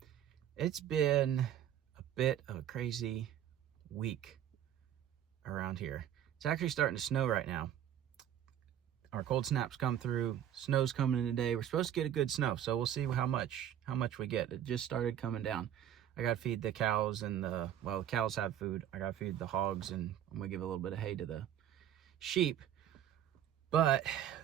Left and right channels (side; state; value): left; quieter; 10.6 dB